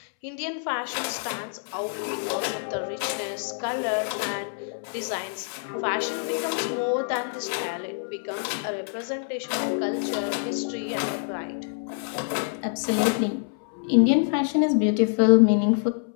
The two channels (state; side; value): silent; right; 61 dB below the other